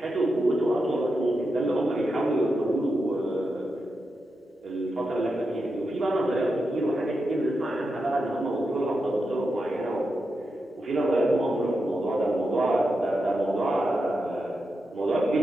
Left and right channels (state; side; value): normal; both; correlation 0.87